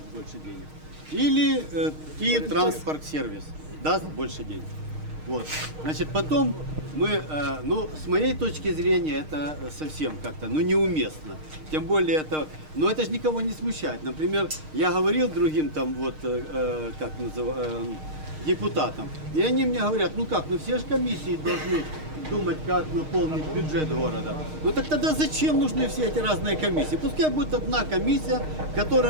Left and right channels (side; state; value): left; late; 6.5 ms